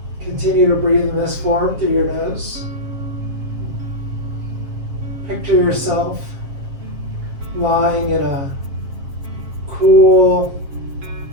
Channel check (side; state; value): left; late; 7.5 ms